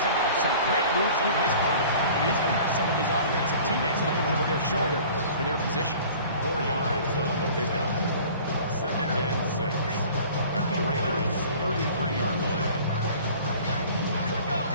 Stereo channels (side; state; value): both; inverted; correlation -0.46